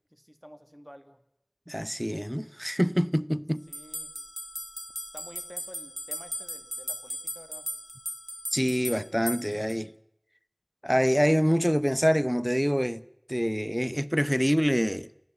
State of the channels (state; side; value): identical; both; correlation 1.00